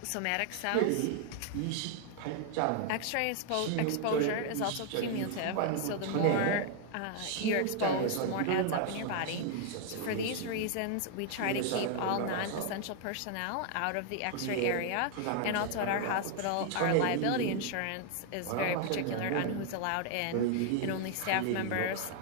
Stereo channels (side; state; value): both; different; correlation 0.00